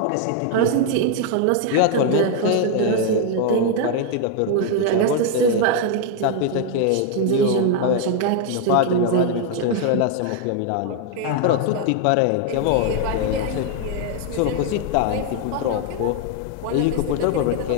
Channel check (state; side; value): different; both; correlation 0.00